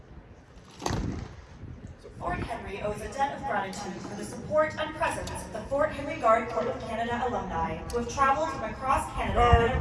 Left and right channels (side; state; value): both; identical; correlation 1.00